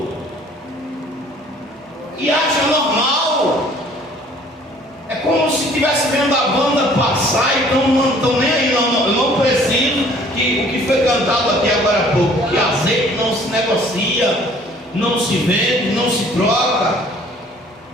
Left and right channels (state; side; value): normal; both; correlation 0.55